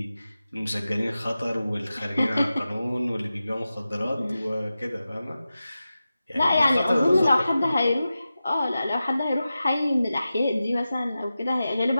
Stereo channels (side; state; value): both; inverted; correlation -0.93